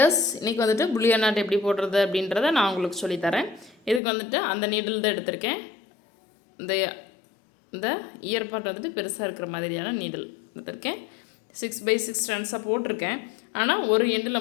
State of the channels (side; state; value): right; drops out; at 4.0 s